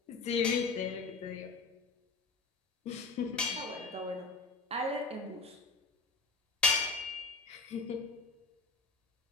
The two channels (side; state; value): right; quieter; 3.9 dB